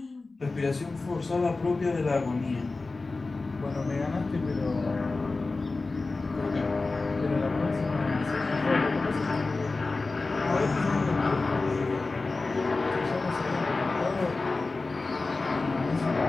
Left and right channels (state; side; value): quieter; right; 3.6 dB